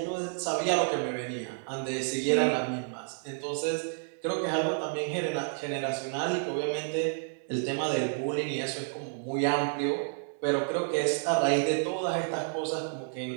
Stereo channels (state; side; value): silent; left; 58 dB below the other